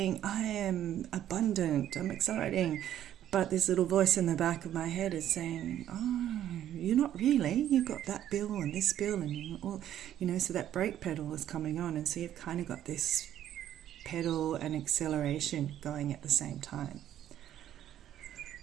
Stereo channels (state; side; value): quieter; left; 11.4 dB